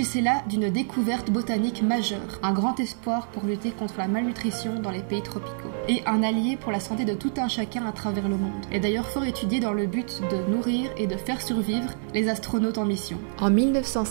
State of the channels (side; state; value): left; silent; digital silence